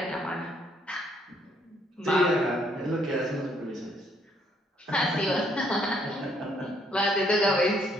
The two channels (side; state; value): both; normal; correlation 0.68